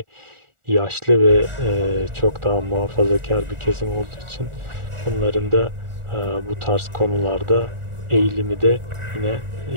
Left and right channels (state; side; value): late; left; 1.4 ms